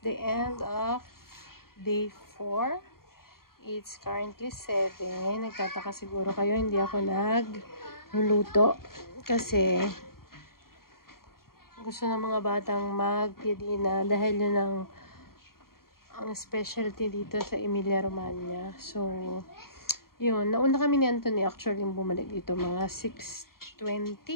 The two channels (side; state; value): right; late; 0.93 ms